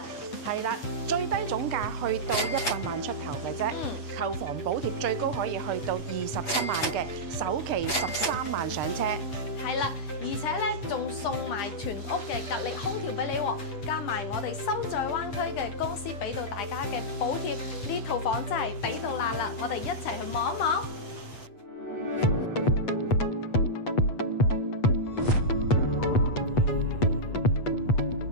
係啦，最低總價去到100萬出頭嘅啫，購房補貼最高可以去到27萬嘅，首期13萬上車。係啦，而且咧仲送埋全屋嘅格力空調俾你喎，加埋我哋心在灣區嘅公司俾到大家嘅補貼，呢套房真係抵到爛啦！我哋一齊去望一望。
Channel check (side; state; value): right; late; 8.2 ms